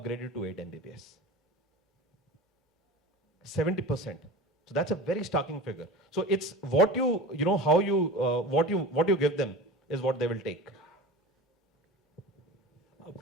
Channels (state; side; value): normal; both; correlation 0.33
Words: to 8 Mbps. 70%. So that's a very starking figure. So it's what what you give them is what they will take.